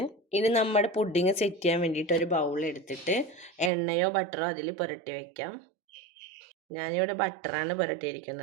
ഇനി നമ്മുടെ പുഡിങ് സെറ്റ് ചെയ്യാൻ വേണ്ടിയിട്ട് ഒരു ബൗൾ എടുത്തിട്ട് എണ്ണയോ ബട്ടറോ അതിൽ പുരട്ടി വയ്ക്കാം. ഞാനിവിടെ ബട്ടറാണ്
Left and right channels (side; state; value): left; drops out; at 3.7 s